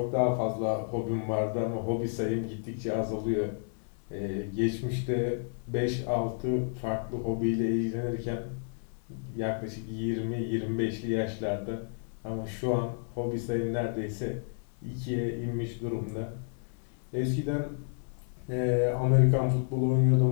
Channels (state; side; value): silent; right; 55 dB below the other